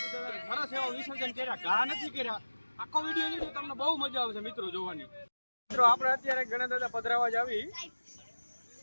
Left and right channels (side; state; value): both; inverted; correlation -1.00